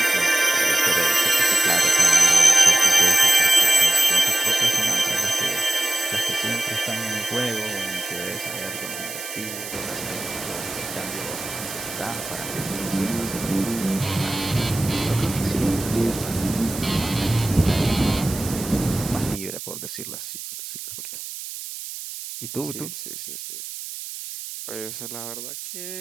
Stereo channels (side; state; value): right; noise; hiss, 10 dB below the sound